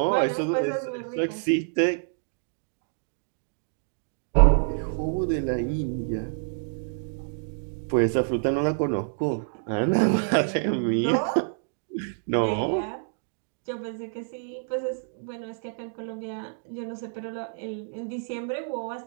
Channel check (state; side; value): silent; left; digital silence